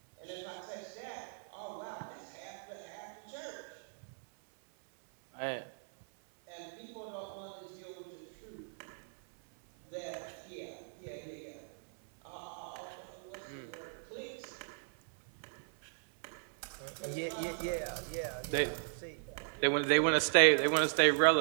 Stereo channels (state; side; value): silent; left; 53 dB below the other